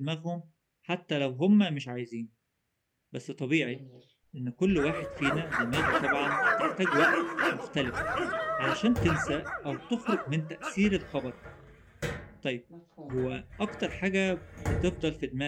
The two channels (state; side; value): identical; both; correlation 1.00